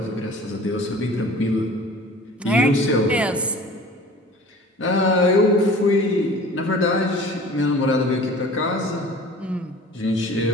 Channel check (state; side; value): normal; both; correlation 0.44